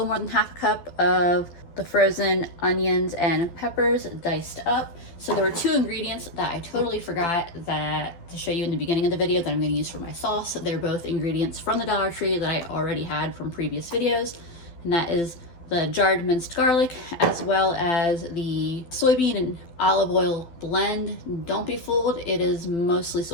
more than half a cup of the frozen onions and peppers diced up. So there were two ingredients that I totally forgot to show you in the beginning of the video that I'm going to use for my sauce. They're both ingredients from the Dollar Tree that I already had from previous videos, and that is the jarred minced garlic as well as the soybean and olive oil blend. Don't be fooled, it is mostly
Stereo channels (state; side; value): late; right; 12 ms